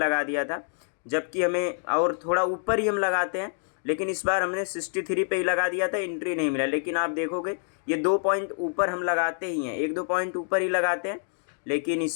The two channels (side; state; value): right; silent; digital silence